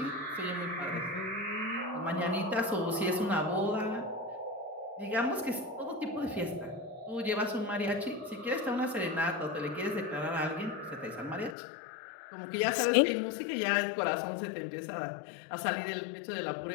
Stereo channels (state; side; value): drops out; right; at 11.6 s